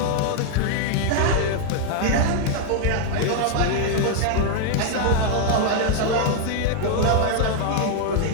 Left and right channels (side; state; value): both; different; correlation 0.00